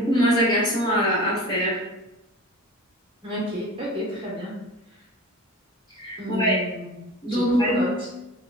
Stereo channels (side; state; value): both; normal; correlation 0.36